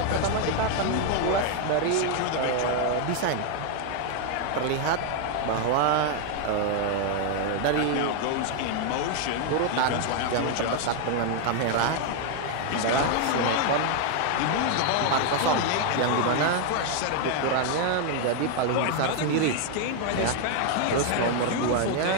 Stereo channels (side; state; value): both; different; correlation 0.00